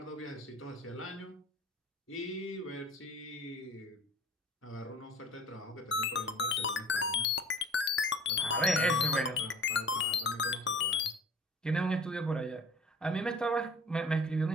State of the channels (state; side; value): normal; both; correlation 0.46